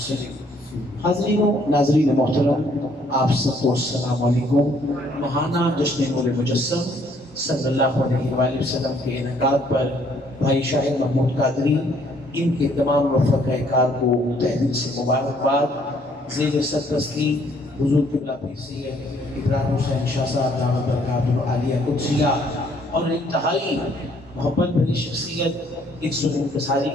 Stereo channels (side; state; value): both; normal; correlation 0.64